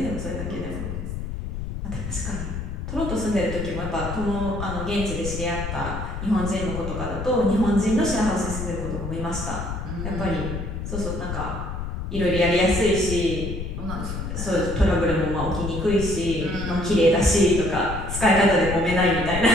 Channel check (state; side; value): noise; left; rumble, 6 dB below the sound